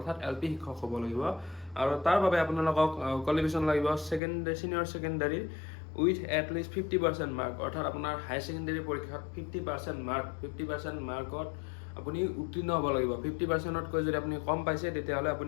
LP শিক্ষক হ'ব লাগিব। আৰু তাৰ বাবে আপোনালোকক কোৱালিফিকেশ্যন লাগিব senior secondary with at least 50% mark, অৰ্থাৎ আপোনাৰ হাই ছেকেণ্ডাৰী পৰীক্ষাত 50% মাৰ্কত আপুনি উত্তীৰ্ণ হ'ব লাগিব। 50%তকৈ যদি আপুনি কম পাইছে, তেতিয়াহ'লে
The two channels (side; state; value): right; drops out; at 4.2 s